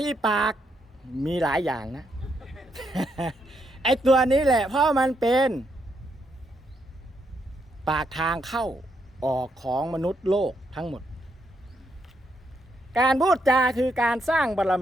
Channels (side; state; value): both; normal; correlation 0.78